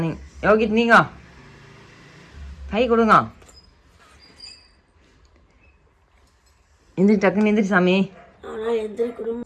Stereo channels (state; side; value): identical; both; correlation 1.00